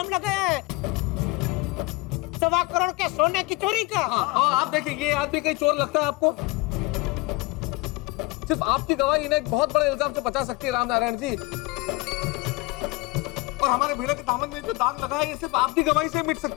लगाया है, 1.25 करोड़ के सोने की चोरी का। आप देखिए, ये आदमी कहीं चोर लगता है आपको? सिर्फ आपकी गवाही इन्हें एक बहुत बड़े इल्जाम से बचा सकती है रामनारायण जी। और हमारे भिड़े के दामन में जो दाग लगा है, ये सिर्फ आपकी गवाही से मिट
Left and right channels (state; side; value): quieter; right; 23.0 dB